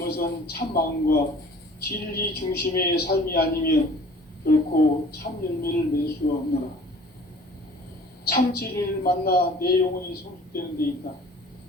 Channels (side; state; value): both; normal; correlation 0.49